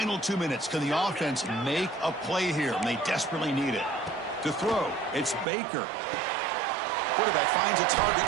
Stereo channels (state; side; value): drops out; left; at 5.5 s